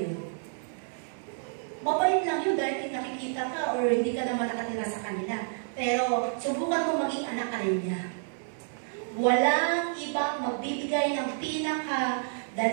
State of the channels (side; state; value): left; silent; 58 dB below the other